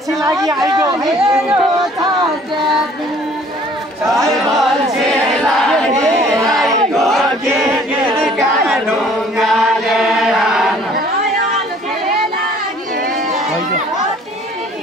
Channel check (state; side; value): normal; both; correlation 0.55